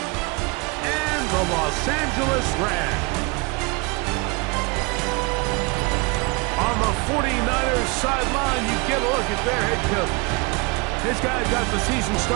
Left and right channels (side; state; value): left; quieter; 28.6 dB